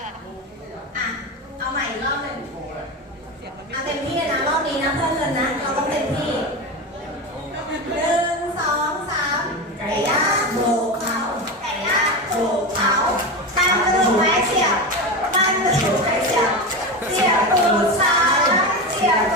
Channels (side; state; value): both; normal; correlation 0.20